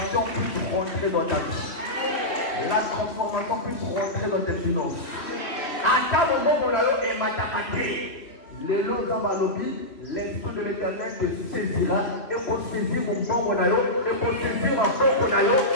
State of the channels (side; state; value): right; late; 2.6 ms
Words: puisse rentrer dans ta vie. La transformation puisse rentrer dans tes finances. À ta moment et matakate. Les lots d'Amalobi, l'Esprit de l'Éternel te saisira et pour saisir mon bon monayo, et pour saisir mon bon monayo,